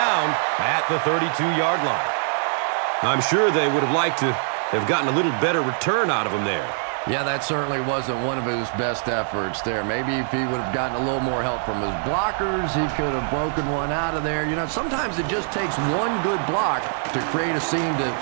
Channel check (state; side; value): silent; left; 63 dB below the other